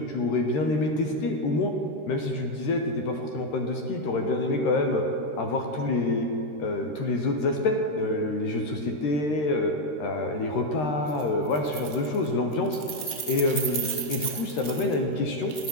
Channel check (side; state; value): right; late; 13 ms